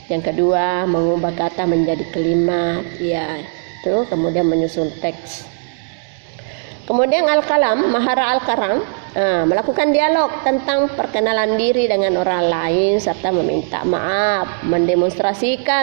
Yang kedua, mengubah kata menjadi kalimat. Ya, itu kemudian menyusun teks. Kemudian al-kalam, mahara al-kalam, Melakukan dialog tentang perkenalan diri dengan orang lain serta meminta maaf,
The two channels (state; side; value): silent; left; digital silence